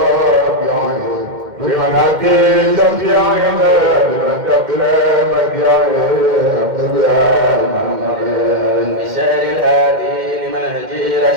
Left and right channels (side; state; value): left; late; 2.1 ms